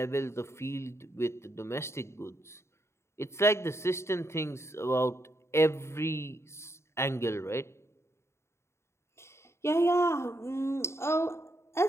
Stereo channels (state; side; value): late; right; 0.13 ms